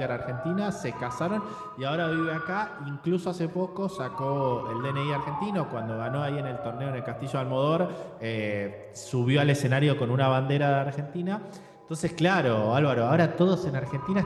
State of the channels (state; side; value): identical; both; correlation 1.00